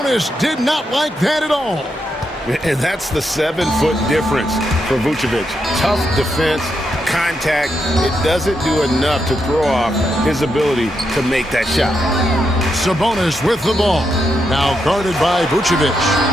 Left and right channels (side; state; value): both; normal; correlation 0.83